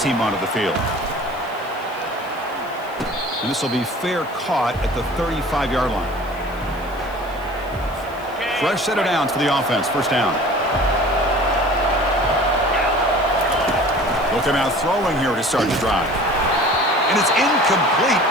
onto the field. And this will be fair caught at the 35-yard line. Fresh set of downs for the offense. First down. They'll come out throwing here to start the drive. And it's incomplete.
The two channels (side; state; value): left; noise; hiss, 24 dB below the sound